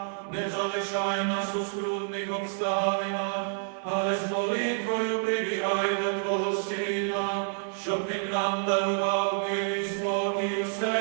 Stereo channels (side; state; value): left; silent; 59 dB below the other